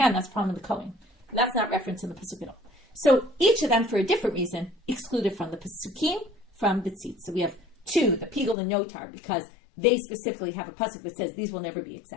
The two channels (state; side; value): drops out; right; at 8.6 s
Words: That's the problem in the Kohen. That's not referenced in the pasuk at all. So each of them, for a different reason, excluded from the pasukim, from the tzitz. So we have two, the piggul and notar, because they specifically have a pasuk that says these will never be